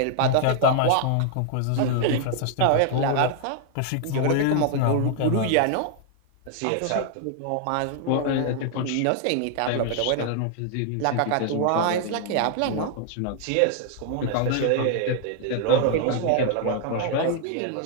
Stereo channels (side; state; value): both; different; correlation 0.00